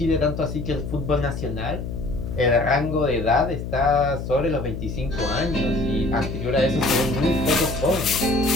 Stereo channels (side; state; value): left; noise; hum, 6 dB below the sound